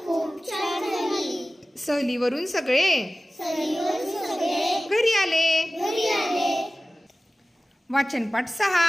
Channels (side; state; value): both; normal; correlation 0.97